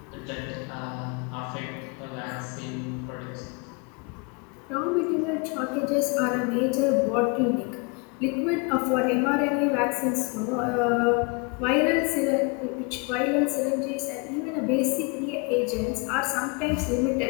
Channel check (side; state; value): right; quieter; 31.3 dB